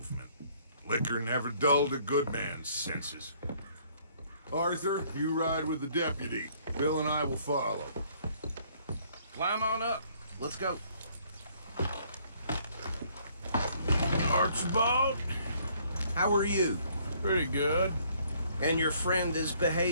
Liquor never dulled a good man's senses. Arthur, you ride with the deputy. Bill and I will follow. Climb on up. Let's go. Archibald? How are you? Pretty good. And your friend is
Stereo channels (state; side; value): inverted; both; correlation -0.63